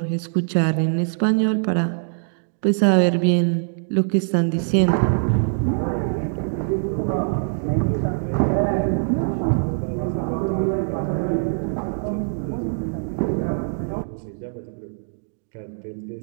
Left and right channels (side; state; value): left; silent; digital silence